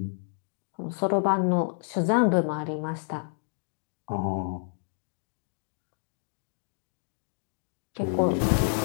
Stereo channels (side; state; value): right; silent; digital silence